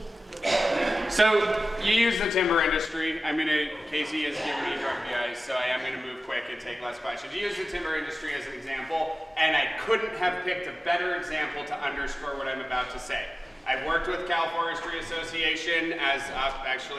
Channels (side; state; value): both; normal; correlation 0.96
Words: to be. So you use the timber industry. Casey has given me grumpy eyes, so I am going to move quick and take less questions. You use the timber industry as an example, and I couldn't have picked a better example to underscore what I'm about to say. I've worked with Cal Forestry Association as